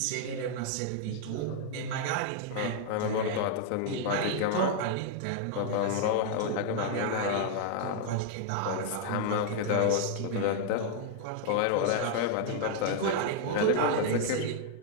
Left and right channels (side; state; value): both; different; correlation 0.00